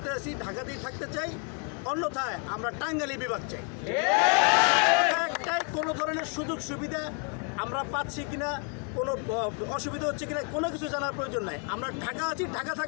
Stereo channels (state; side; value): quieter; right; 39.6 dB